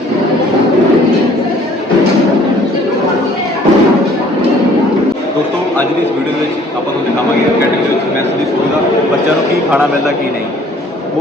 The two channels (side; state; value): both; normal; correlation 0.56